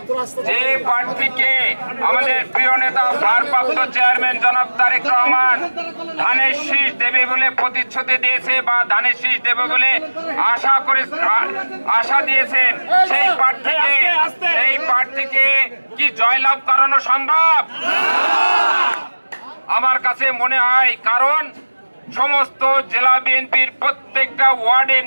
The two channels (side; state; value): both; inverted; correlation -1.00